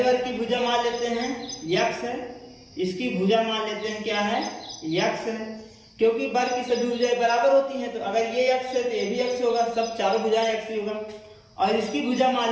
वर्ग की भुजा मान लेते हैं x है, इसकी भुजा मान लेते हैं क्या है? x है। क्योंकि वर्ग की सभी भुजाएं बराबर होती हैं, तो अगर ये x है तो ये भी x होगा, सब चारों भुजाएं x ही होगा। और इसकी भुजा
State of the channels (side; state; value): both; identical; correlation 1.00